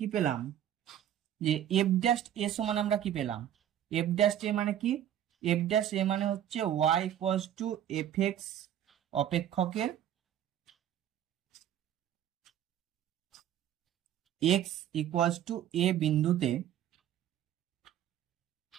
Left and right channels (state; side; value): quieter; left; 10.8 dB